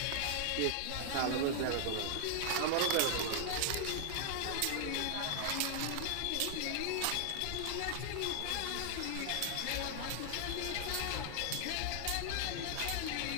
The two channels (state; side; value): different; both; correlation -0.01